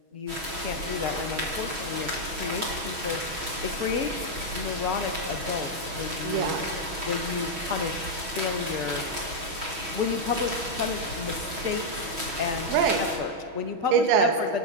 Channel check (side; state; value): left; late; 6.2 ms